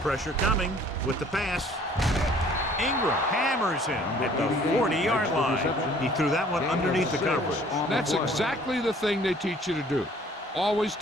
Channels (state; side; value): normal; both; correlation 0.55